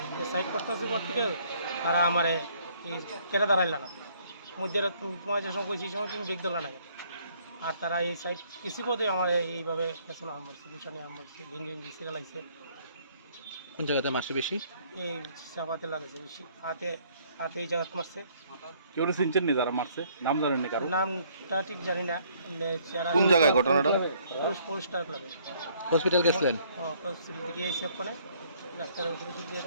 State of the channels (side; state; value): both; inverted; correlation -0.63